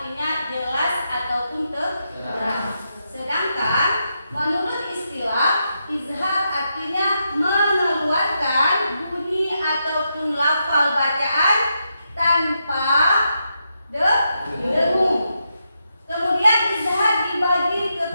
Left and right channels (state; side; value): inverted; both; correlation -0.84